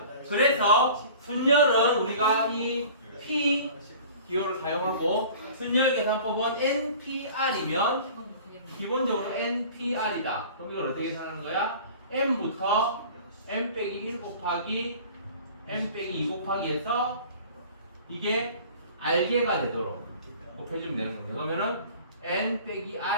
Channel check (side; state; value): both; inverted; correlation -0.44